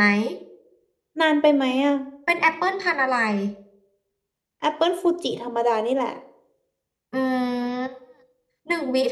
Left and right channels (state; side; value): identical; both; correlation 1.00